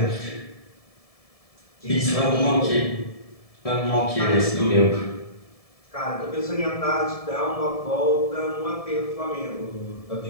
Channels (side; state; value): right; late; 1.7 ms